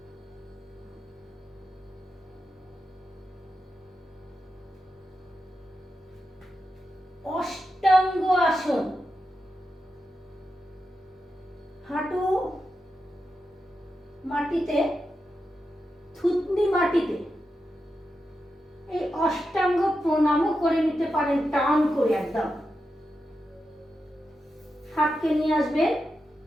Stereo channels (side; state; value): both; normal; correlation 0.88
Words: অষ্টাঙ্গ আসন, হাঁটু মাটিতে, থুতনি মাটিতে। এই অষ্টাঙ্গ প্রণামও করে নিতে পারেন টান করে একদম। হাতকে নিয়ে আসবেন